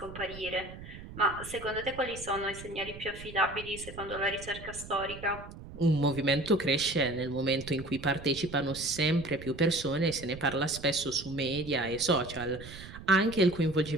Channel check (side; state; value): right; noise; rumble, 14 dB below the sound